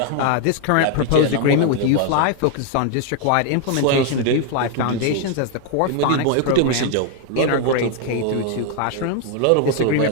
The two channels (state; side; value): different; both; correlation 0.00